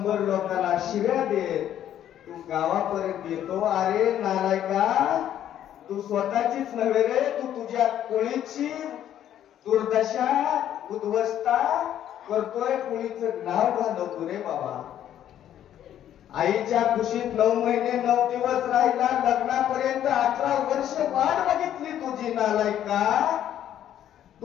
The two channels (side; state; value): right; quieter; 11.0 dB